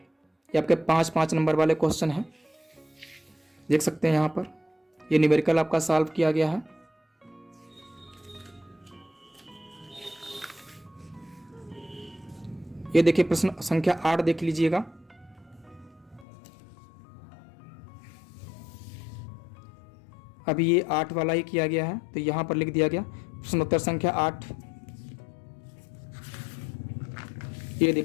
आपके 5-5 नंबर वाले क्वेश्चन हैं, देख सकते हैं यहाँ पर। ये न्यूमेरिकल आपका सॉल्व किया गया है। ये देखिए प्रश्न संख्या 8 देख लीजिएगा। अभी ये 8 वाला ही किया गया है, तो यहां पर लिख दिया गया प्रश्नोत्तर संख्या 8। ये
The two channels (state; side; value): drops out; right; at 16.2 s